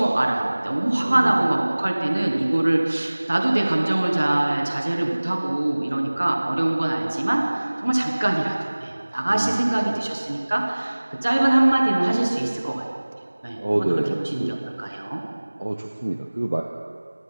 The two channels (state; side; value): inverted; both; correlation -1.00